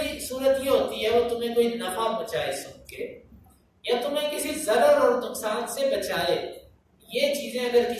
صورت یہ ہوتی ہے وہ تمہیں کوئی نفع پہنچائے سن کے، یا تمہیں کسی ضرر اور نقصان سے بچائے۔ یہ چیزیں اگر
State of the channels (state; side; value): identical; both; correlation 1.00